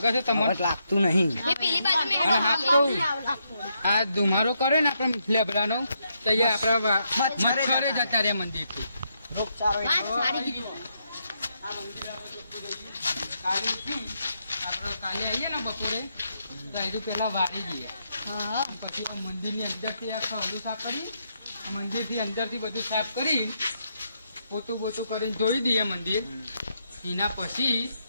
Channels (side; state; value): both; inverted; correlation -0.79